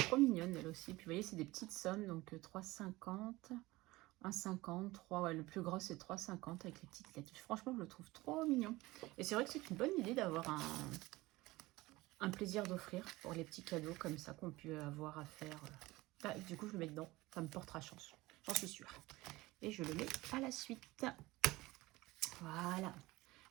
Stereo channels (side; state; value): left; quieter; 19.9 dB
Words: mignonne elle aussi, puis vous voyez c'est des petites sommes, donc 3,50 1,50, 3, ouais, le plus gros c'est 3,50 avec les petites lettres. Franchement, je le trouve trop mignon. Et c'est vrai que c'est une bonne idée d'avoir un plaisir d'offrir pour les petits cadeaux comme ça qu'on peut avoir à faire. Du coup, je le mets dedans. Ça me portera chance. J'en suis sûre. Et je le mets à la suite. Voilà.